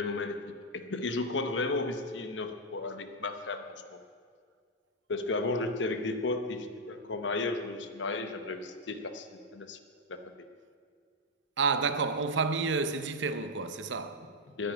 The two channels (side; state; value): both; normal; correlation -0.01